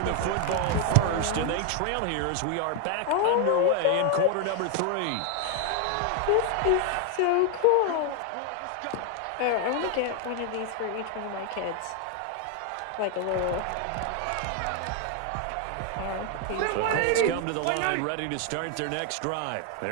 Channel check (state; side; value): different; both; correlation 0.01